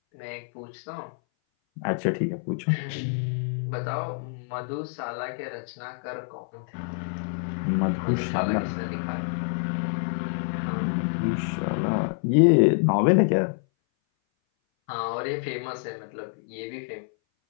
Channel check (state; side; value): silent; right; 58 dB below the other